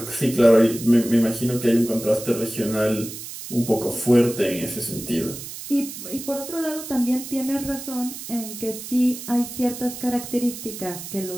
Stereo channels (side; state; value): right; noise; hiss, 10 dB below the sound